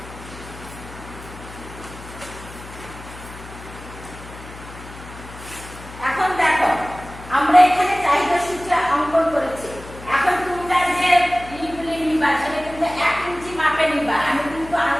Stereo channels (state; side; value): noise; left; hum, 15 dB below the sound